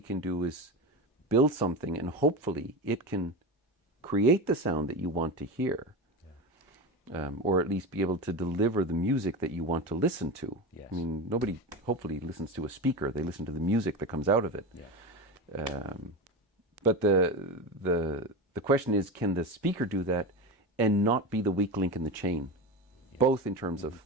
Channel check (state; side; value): normal; both; correlation 0.23